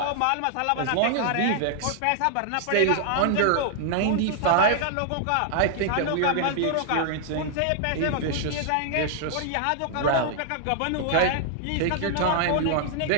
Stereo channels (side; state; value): both; different; correlation 0.00